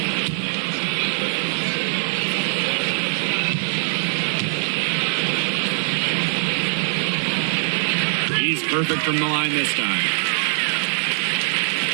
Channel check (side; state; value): left; silent; digital silence